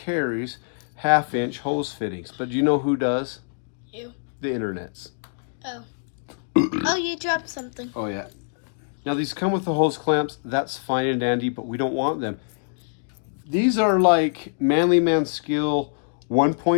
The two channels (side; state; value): right; silent; digital silence